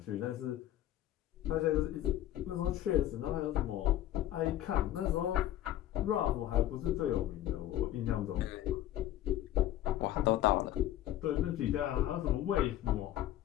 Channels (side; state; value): right; quieter; 13.1 dB